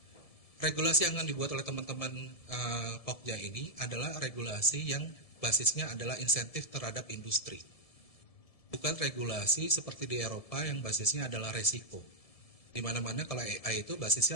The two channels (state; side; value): late; right; 1.7 ms